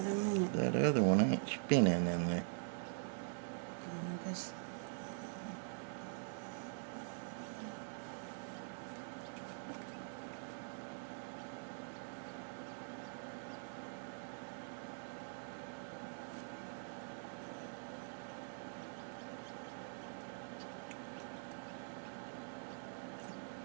in a minute. That other one ain't spinning in there. I guess.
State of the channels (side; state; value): left; silent; digital silence